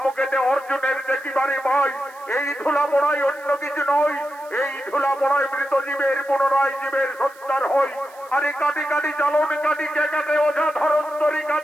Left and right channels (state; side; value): noise; right; hiss, 26 dB below the sound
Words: অর্জুনের দেখিবারে ভাই। এই ধুলা পড়াই অন্য কিছু নয়, এই ধুলা পড়াই মৃত জীবের পুনরায় জীবের সত্যার হয়। আরে কাটি কাটি চালন কাটি কে কাটে ওঝা ধরন্তরী